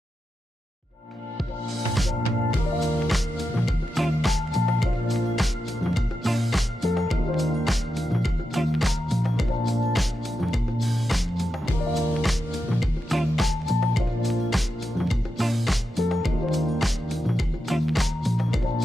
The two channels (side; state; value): both; normal; correlation 0.88